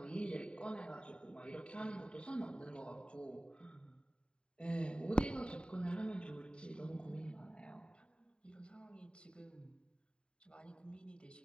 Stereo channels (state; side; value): late; right; 0.052 ms